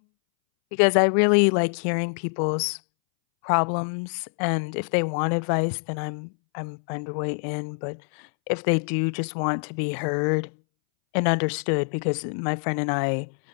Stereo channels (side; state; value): right; silent; 62 dB below the other